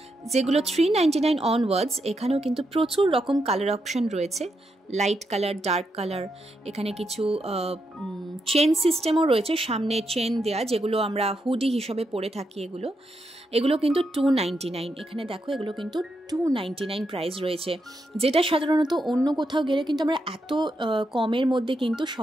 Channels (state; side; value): normal; both; correlation 0.82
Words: যেগুলো 399 অনওয়ার্ডস। এখানেও কিন্তু প্রচুর রকম কালার অপশন রয়েছে, লাইট কালার, ডার্ক কালার। এখানে কিছু চেন সিস্টেমও রয়েছে, সামনে চেন দেয়া, যেগুলো আমরা হুডি হিসাবে পরে থাকি। এগুলো কিন্তু 299। এখানে দেখো এগুলো কিন্তু 299 প্রাইস রয়েছে, যেটা সাধারণত অন্য কোথাও গেলে কিন্তু আমরা এত কমের মধ্যে কিন্তু